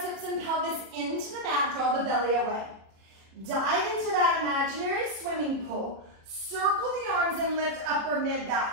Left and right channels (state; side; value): late; left; 36 ms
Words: hips and pelvis into the mat, draw the belly away. Dive into that imaginary swimming pool. Circle the arms and lift upper